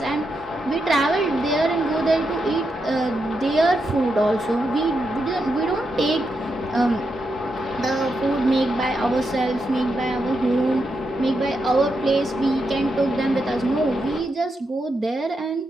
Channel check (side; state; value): both; normal; correlation 0.84